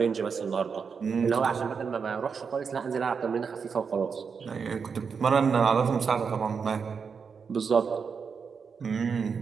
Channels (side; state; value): left; quieter; 5.9 dB